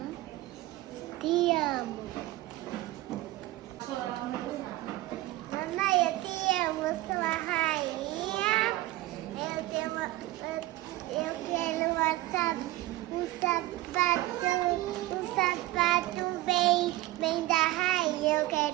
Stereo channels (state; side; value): quieter; left; 17.7 dB